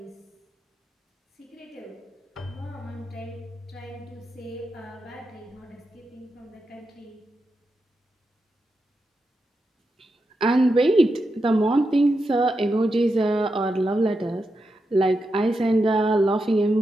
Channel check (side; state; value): both; normal; correlation 0.87